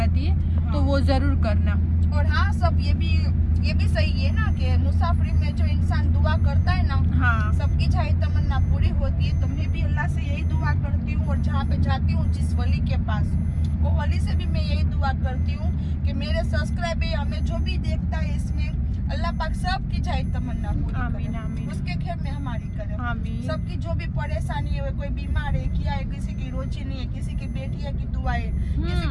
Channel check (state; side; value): identical; both; correlation 1.00